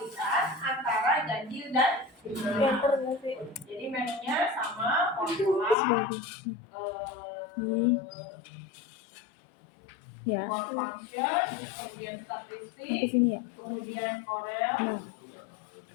antara ganjil dan genap. Enter nggak sih? Jadi menunya sama formula ini ya for function, kemudian sampai statistik, sini ya. kemudian Corel. Nah,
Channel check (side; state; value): right; drops out; at 5.8 s